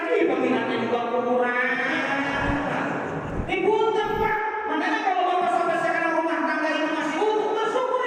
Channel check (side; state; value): both; identical; correlation 1.00